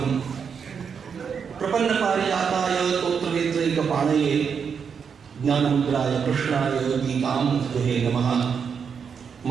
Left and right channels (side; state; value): left; quieter; 6.6 dB